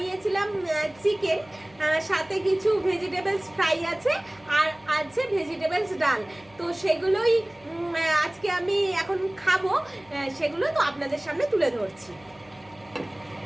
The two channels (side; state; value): left; noise; hum, 28 dB below the sound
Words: চিকেন, সাথে কিছু ভেজিটেবলস ফ্রাই আছে আর আছে ভেজিটেবলস ডাল। তো সেগুলোই আজকে আমি এখন খাবো, সেগুলো তো আপনাদের সামনে তুলে ধরছি।